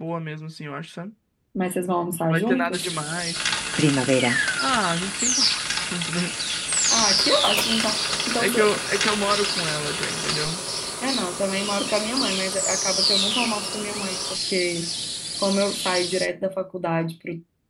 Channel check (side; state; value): both; identical; correlation 1.00